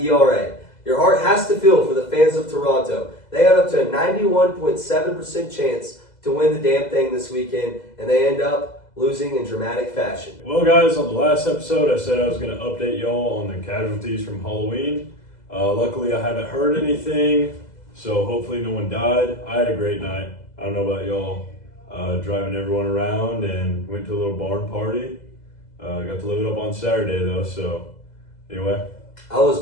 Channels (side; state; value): right; late; 2.0 ms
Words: ERA. Your heart has to feel for the fans of Toronto. They had up to a 91.7% chance to win the damn thing this weekend, and they end up losing in dramatic fashion. Well, guys, on the last episode, I said I was going to update y'all on the casualties from Halloween. Luckily, I haven't heard anything, so hopefully no one died. I had a great night. I don't know about y'all. Driving everyone around and went to a little barn party. Got to live it up on Saturday, though, so anyway. I was